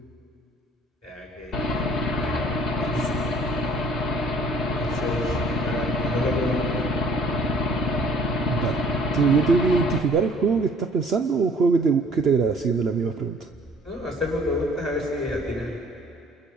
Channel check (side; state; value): both; normal; correlation 0.56